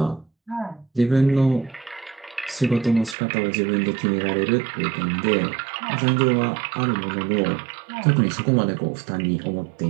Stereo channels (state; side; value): drops out; left; at 3.2 s